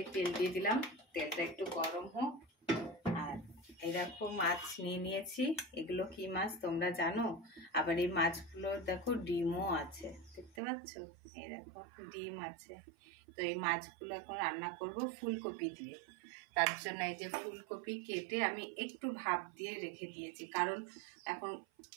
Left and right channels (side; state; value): left; drops out; at 10.5 s